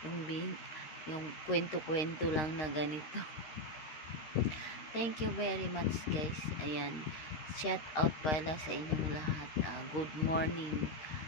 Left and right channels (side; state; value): right; late; 13 ms